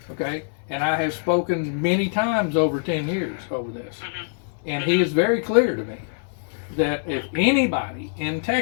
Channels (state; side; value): silent; right; 63 dB below the other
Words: okay, and I have spoken many times over 10 years over this. And he is very clear to me that if anybody in